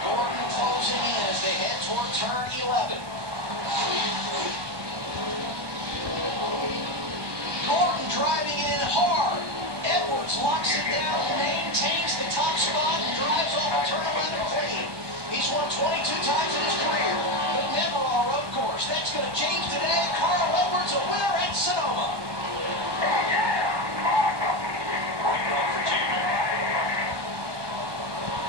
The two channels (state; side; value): late; left; 1.2 ms